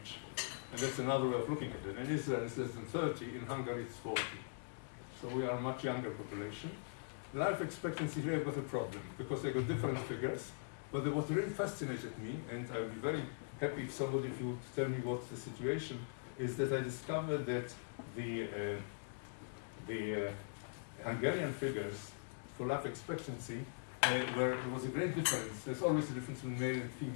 and that's another way of looking at it. In Israel, it's less than 30. In Hungary, it's 40. So we are a much younger population. Life expectancy here, I've got a problem, because I got different figures. But what really fascinated me, and I would be very happy if somebody of you would tell me what's the situation, is that I discovered that the Hungarian figures for life expectancy, where there was a great difference. There's always a difference between male and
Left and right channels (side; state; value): right; silent; digital silence